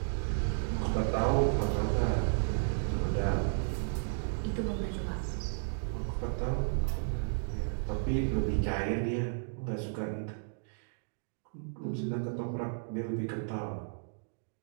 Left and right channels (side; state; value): left; silent; digital silence